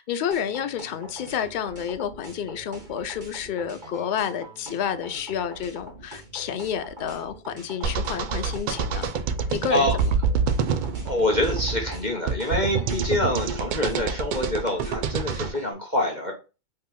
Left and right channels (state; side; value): late; left; 2.2 ms